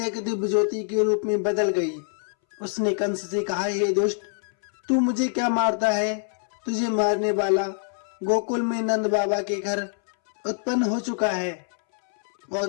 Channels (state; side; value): silent; right; 62 dB below the other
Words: दिव्य ज्योति के रूप में बदल गई। उसने कंस से कहा, हे दुष्ट, तू मुझे क्या मारता है? तुझे मारने वाला गोकुल में नंद बाबा के घर उत्पन्न हो चुका है